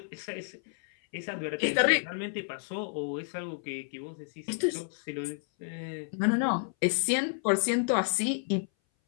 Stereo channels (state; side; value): silent; right; 57 dB below the other